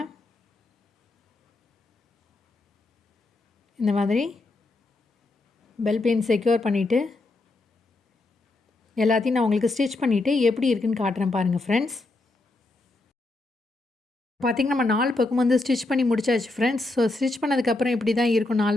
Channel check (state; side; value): quieter; right; 3.0 dB